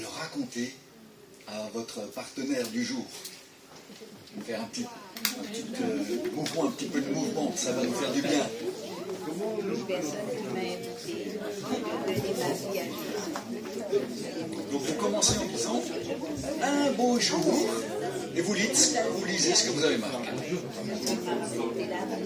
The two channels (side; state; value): both; identical; correlation 1.00